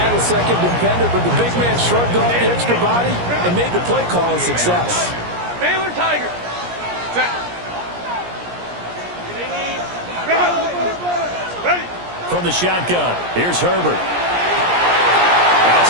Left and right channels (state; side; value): late; left; 17 ms